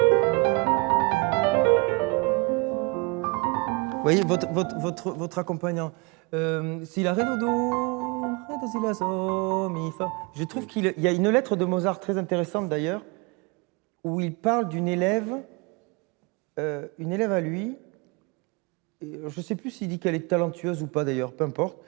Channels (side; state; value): left; quieter; 28.4 dB